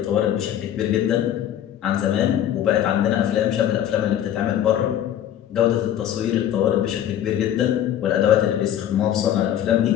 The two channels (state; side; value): quieter; right; 10.9 dB